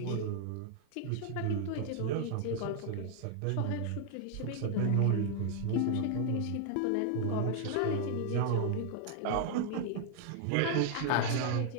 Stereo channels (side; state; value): both; different; correlation 0.00